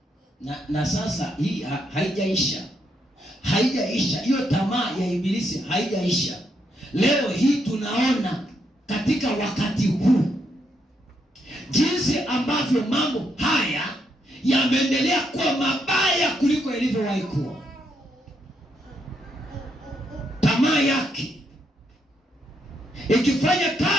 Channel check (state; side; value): normal; both; correlation 0.78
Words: Na sasa hii haijaisha. Haijaisha. Hiyo tamaa ya ibilisi haijaisha. Leo hii tunaona katika wakati huu jinsi ambavyo mambo haya yameendelea kuwa mabaya kuliko ilivyowahi kuwa. Tamaa yake ikifanya